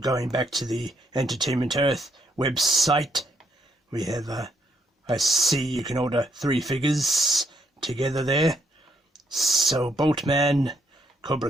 back to the Entertainment Earth website, we have I see you can order 3 figures together there. So Boltman,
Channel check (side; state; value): both; normal; correlation 0.73